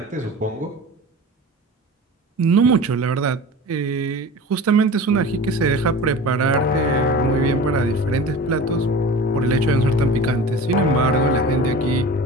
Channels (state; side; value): normal; both; correlation 0.36